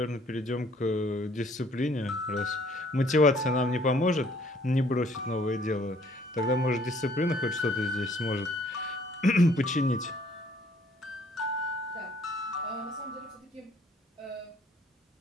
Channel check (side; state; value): both; normal; correlation 0.61